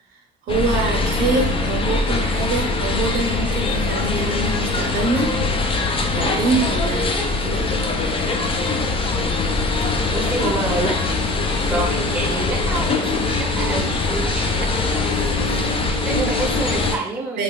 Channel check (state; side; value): normal; both; correlation 0.41